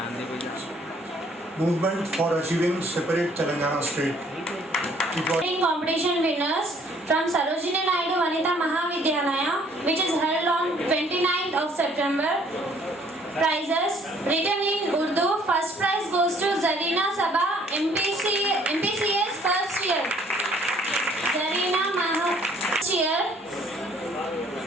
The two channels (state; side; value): normal; both; correlation 0.61